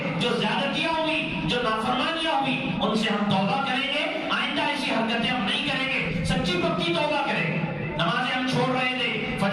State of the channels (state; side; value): identical; both; correlation 1.00